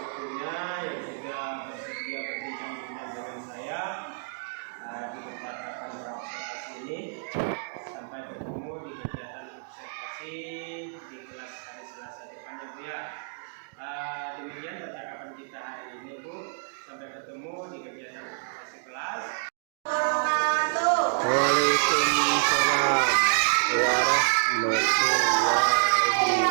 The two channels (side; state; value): left; silent; digital silence